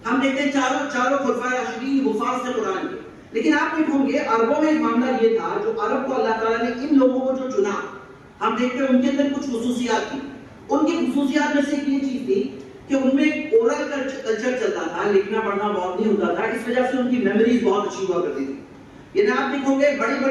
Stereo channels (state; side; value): identical; both; correlation 1.00